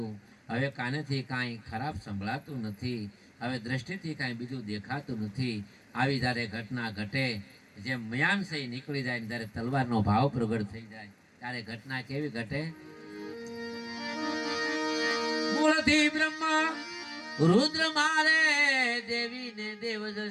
હવે કાનેથી કાંઈ ખરાબ સંભળાતું નથી, હવે દ્રષ્ટિથી કાંઈ બીજું દેખાતું નથી. આવી જ્યારે ઘટના ઘટે, જેમ મયાન છે નીકળી જાય, જ્યારે તલવારનો ભાવ પ્રગટ થઈ જાય, ત્યારે ઘટના કેવી ઘટે? મૂળથી બ્રહ્મા રુદ્ર મારે દેવી ને દેવ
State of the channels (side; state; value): both; identical; correlation 1.00